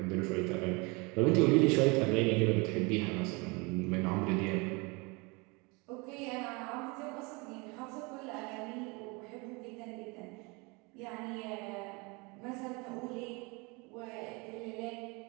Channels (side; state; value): left; quieter; 28.0 dB